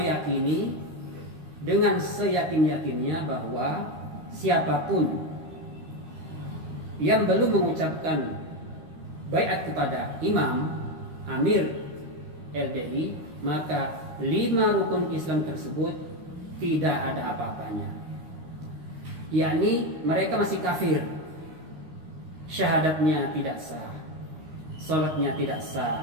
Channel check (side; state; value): left; late; 13 ms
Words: dengan seyakin-yakinnya bahwa siapapun yang belum mengucapkan baiat kepada imam, amir LDI, maka 5 rukun Islam tersebut tidak ada apa-apanya. Yakni mereka masih kafir, syahadatnya tidak sah, sholatnya tidak